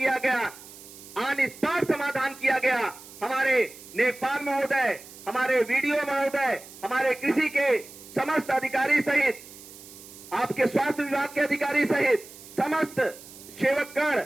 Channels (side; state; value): right; noise; hiss, 18 dB below the sound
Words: गया, ऑन स्पॉट समाधान किया गया। हमारे नेकपाल महोदय, हमारे वीडियो महोदय, हमारे कृषि के समस्त अधिकारी सहित, आपके स्वास्थ्य विभाग के अधिकारी सहित समस्त सेवकगण,